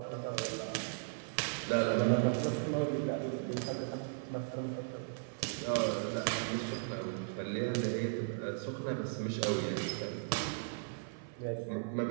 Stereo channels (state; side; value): silent; left; 53 dB below the other